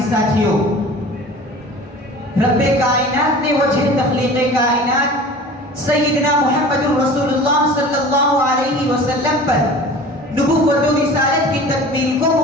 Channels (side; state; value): both; normal; correlation 0.41